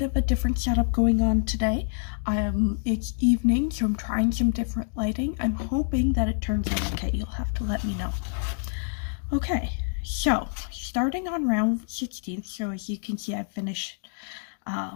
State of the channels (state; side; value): silent; right; digital silence